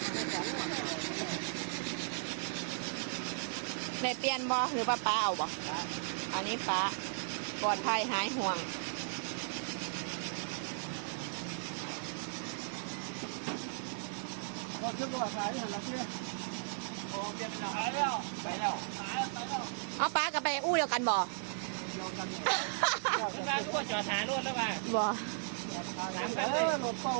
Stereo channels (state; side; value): silent; left; 54 dB below the other